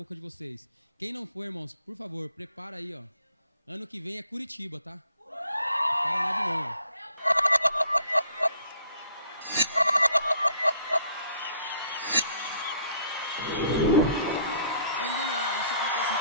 de vocês. Quem não for, irmãos, por favor, prepara aí, ó. Ano que vem é Curitiba, tá? Paraná de novo. Pode demorar, isso acontece em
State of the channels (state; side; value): inverted; both; correlation -0.61